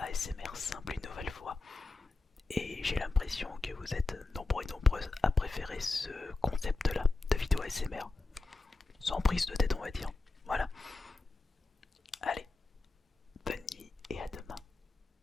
simple une nouvelle fois. Et j'ai l'impression que vous êtes nombreux et nombreuses à préférer ce concept là de vidéo ASMR. Sans prise de tête on va dire. Voilà.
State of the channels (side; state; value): right; quieter; 3.5 dB